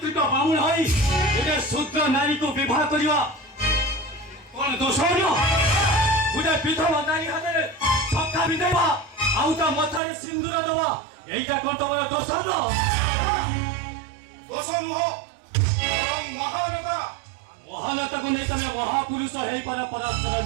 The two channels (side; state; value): left; drops out; at 10.0 s